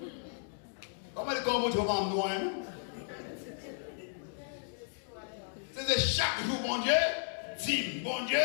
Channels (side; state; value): right; silent; digital silence